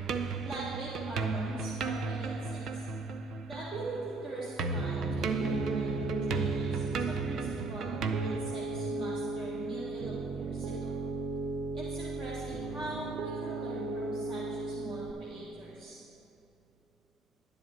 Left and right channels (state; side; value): quieter; left; 3.2 dB